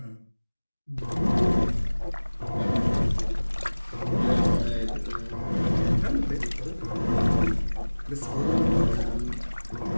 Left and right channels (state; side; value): inverted; both; correlation -1.00